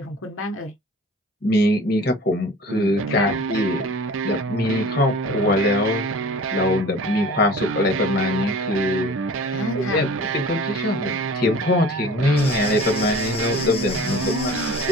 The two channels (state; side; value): normal; both; correlation 0.43